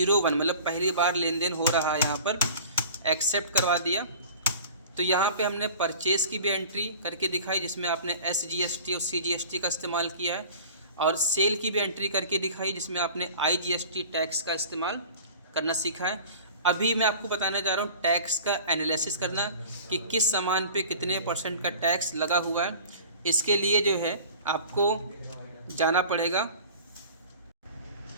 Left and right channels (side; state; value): both; inverted; correlation -0.42